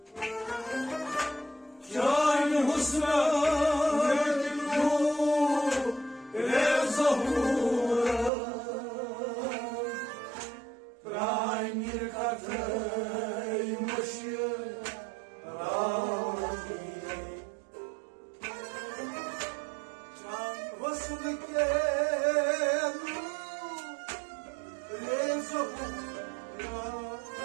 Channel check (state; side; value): drops out; left; at 8.3 s